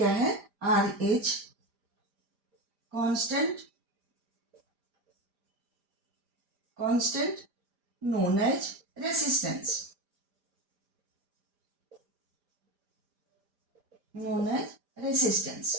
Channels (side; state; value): left; late; 5.0 ms